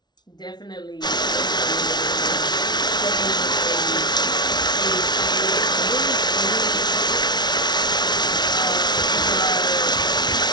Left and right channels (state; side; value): late; right; 0.20 ms